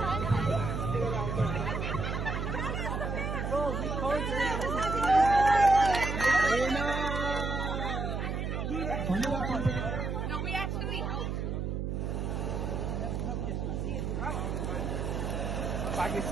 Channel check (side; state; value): right; noise; hum, 2 dB below the sound